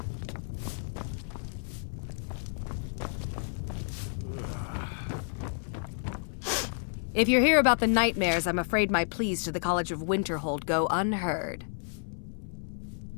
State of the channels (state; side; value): silent; right; 57 dB below the other